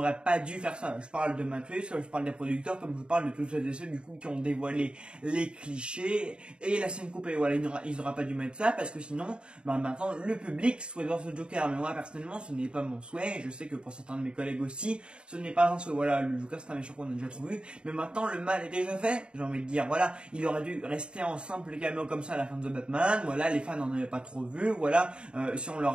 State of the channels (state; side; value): late; left; 0.053 ms